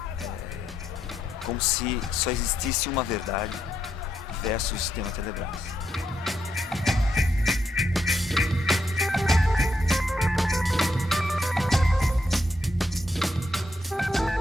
como se só existisse uma verdade versus o sistema Telebrás.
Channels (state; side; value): normal; both; correlation 0.79